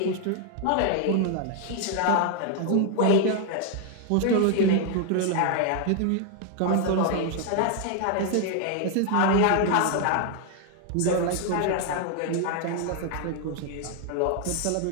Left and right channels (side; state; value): both; different; correlation 0.00